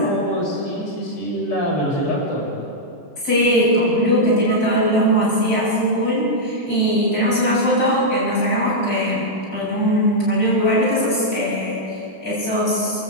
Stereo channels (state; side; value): normal; both; correlation -0.05